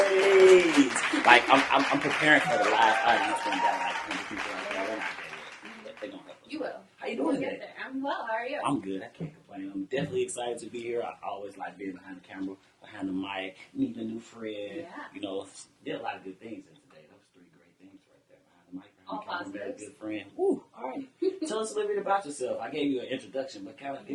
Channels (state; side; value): identical; both; correlation 1.00